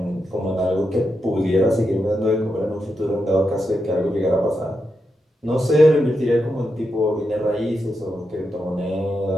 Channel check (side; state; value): both; normal; correlation 0.86